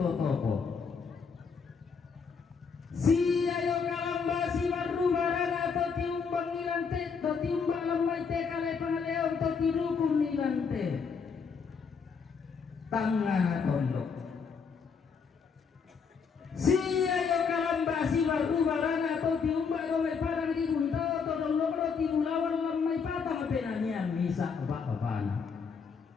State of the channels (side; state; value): right; quieter; 5.8 dB